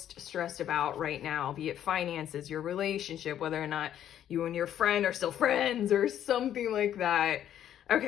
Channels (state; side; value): quieter; right; 10.7 dB